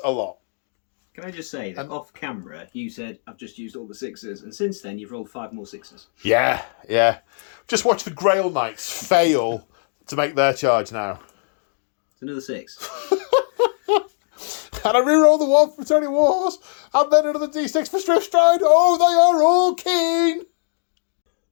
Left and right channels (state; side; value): silent; right; digital silence